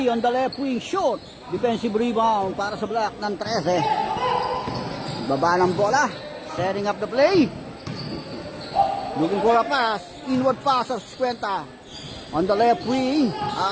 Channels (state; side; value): identical; both; correlation 1.00